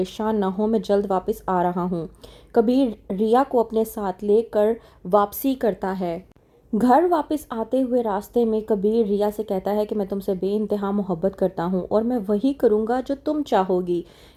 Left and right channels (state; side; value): identical; both; correlation 1.00